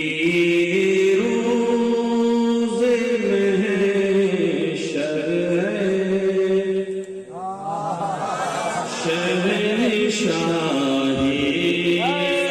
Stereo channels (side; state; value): both; identical; correlation 1.00